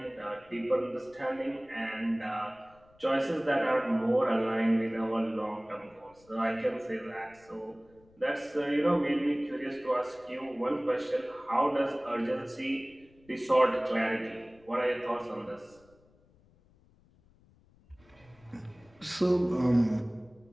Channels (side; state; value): left; noise; rumble, 30 dB below the sound